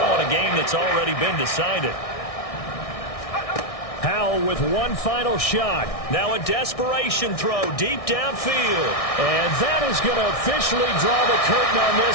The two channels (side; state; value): right; late; 1.6 ms